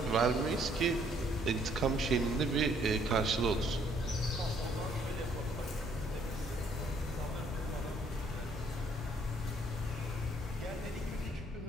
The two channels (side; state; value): both; normal; correlation 0.65